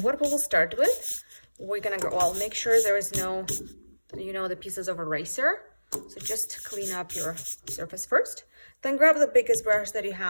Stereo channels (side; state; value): both; inverted; correlation -1.00